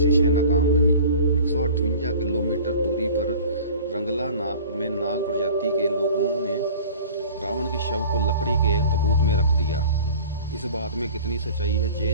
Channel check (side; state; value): both; inverted; correlation -0.43